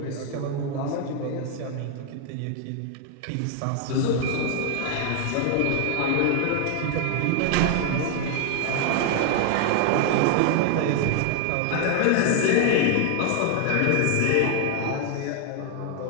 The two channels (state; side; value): different; both; correlation 0.01